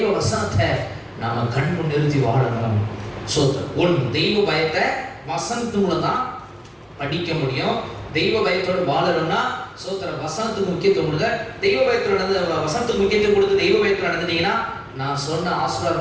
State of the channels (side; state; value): both; identical; correlation 1.00